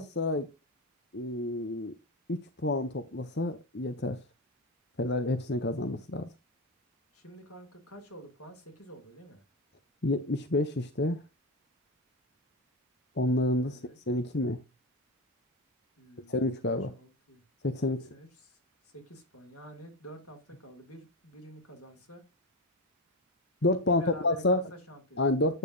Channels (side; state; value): both; normal; correlation 0.15